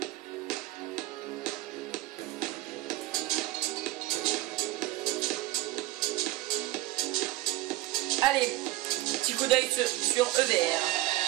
Allez, petit coup d'œil sur EVR.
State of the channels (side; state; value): left; quieter; 17.4 dB